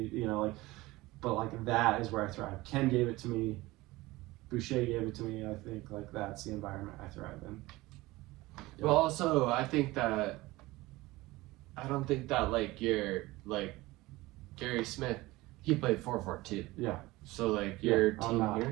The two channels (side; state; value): left; quieter; 19.8 dB